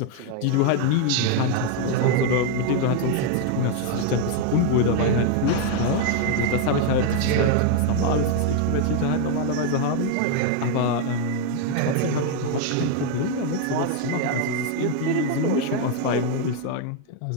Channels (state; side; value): different; both; correlation 0.01